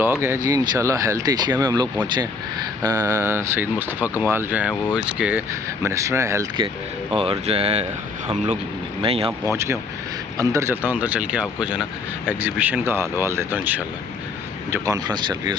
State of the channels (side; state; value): right; quieter; 4.1 dB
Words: है जी, इंशाल्लाह हेल्थ एशिया में हम लोग पहुँचे हैं। सईद मुस्तफ़ा कमाल जो हैं वो इसके मिनिस्टर हैं हेल्थ के, और जो है हम लोग, मैं यहाँ पहुँच गया हूँ। अंदर चलता हूँ, अंदर चल के आपको जो है ना एग्ज़िबिशन का हाल वाल देता हूँ इंशाल्लाह। जो कॉन्फ्रेंस चल रही है